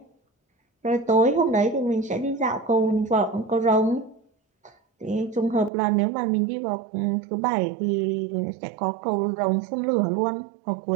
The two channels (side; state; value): left; drops out; at 5.7 s